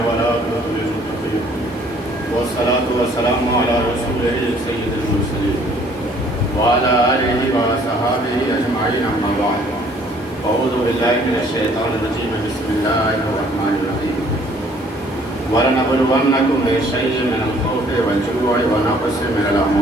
والعاقبة للمتقين والصلاة والسلام على رسوله سيد المرسلين وعلى آله وصحبه أجمعين أما بعد أعوذ بالله من الشيطان الرجيم بسم الله الرحمن الرحيم ولنبلونكم بشيء من الخوف والجوع ونقص من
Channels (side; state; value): both; normal; correlation 0.59